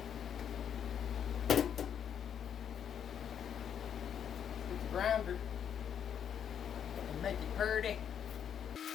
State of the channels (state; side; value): quieter; right; 8.5 dB